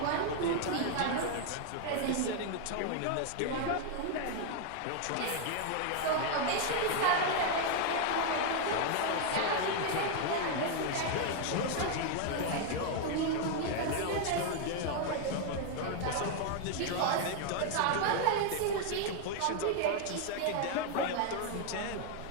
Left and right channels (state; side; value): different; both; correlation 0.00